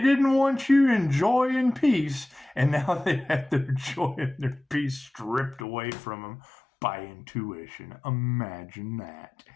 want you in joy and peace, and now they had their joy and their peace stripped away from them by intuition. Imagine that.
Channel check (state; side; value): drops out; right; at 5.7 s